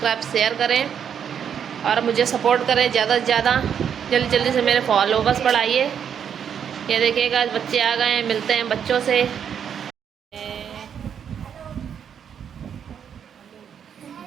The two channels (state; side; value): quieter; left; 8.1 dB